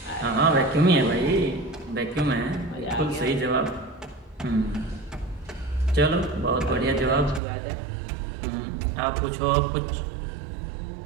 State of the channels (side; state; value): left; drops out; at 7.4 s